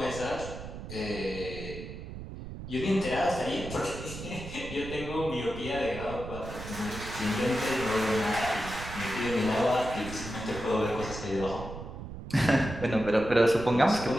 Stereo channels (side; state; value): right; noise; rumble, 10 dB below the sound